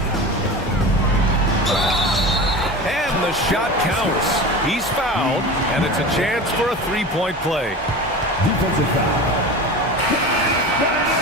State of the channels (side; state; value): both; normal; correlation 0.31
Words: And the shot counts. He's fouled, and it's a chance for a 3-point play. Defensive foul.